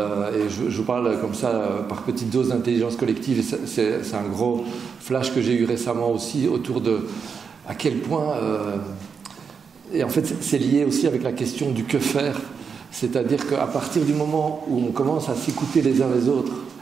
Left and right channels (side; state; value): left; quieter; 6.0 dB